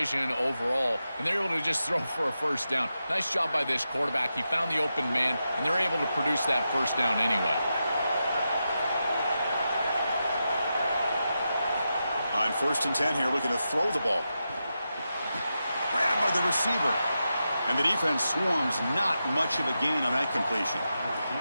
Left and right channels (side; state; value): both; inverted; correlation -0.88